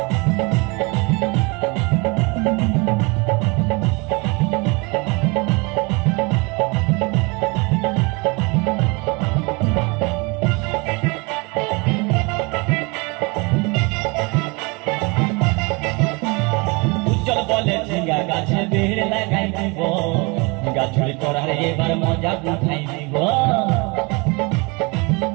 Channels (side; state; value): left; quieter; 28.4 dB